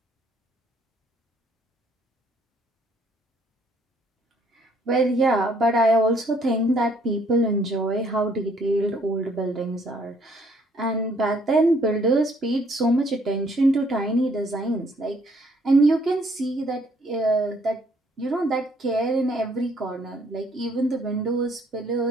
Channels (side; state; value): both; normal; correlation 0.64